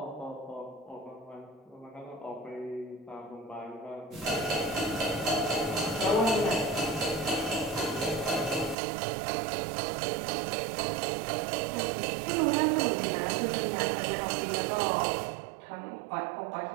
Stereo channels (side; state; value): left; drops out; at 8.8 s